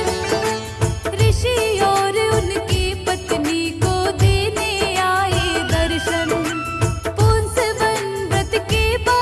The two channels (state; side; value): identical; both; correlation 1.00